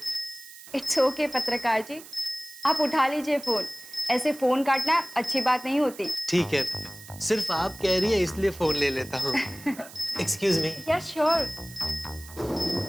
इट्स ओके पत्रकार जी, आप उठा लीजिए फोन, ऐसे फोन काटना अच्छी बात नहीं होती। ठीक है, सिर्फ आप कह रही है इसलिए फोन ले लेता हूँ। Excuse me. Yes sure.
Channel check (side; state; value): right; noise; hiss, 17 dB below the sound